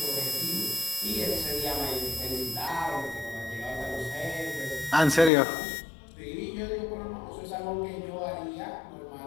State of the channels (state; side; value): drops out; right; at 5.3 s